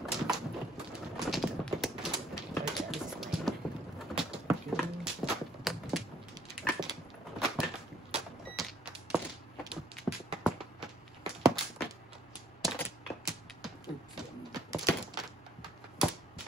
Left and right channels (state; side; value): normal; both; correlation 0.62